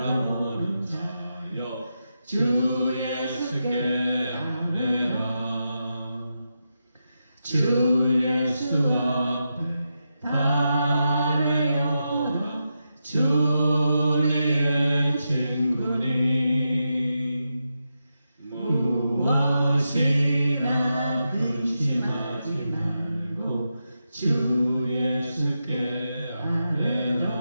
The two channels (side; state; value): both; inverted; correlation -0.87